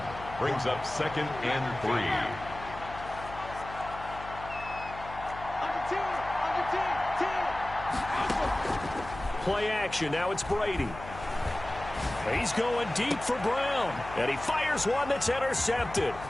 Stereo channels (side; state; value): left; noise; hum, 14 dB below the sound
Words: Brings up 2nd and 3. Play action. Now it's Brady. He's going deep for Brown. And he fires one that's intercepted.